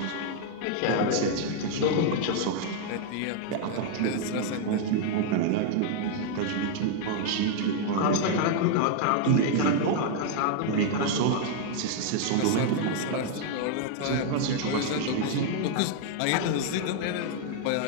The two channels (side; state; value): both; different; correlation 0.00